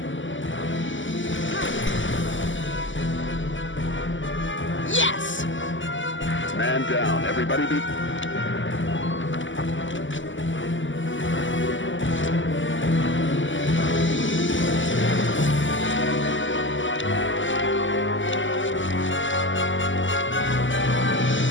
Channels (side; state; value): right; late; 0.55 ms